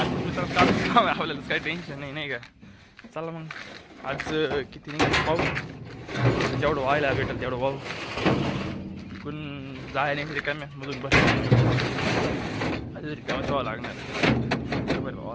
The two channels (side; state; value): both; identical; correlation 1.00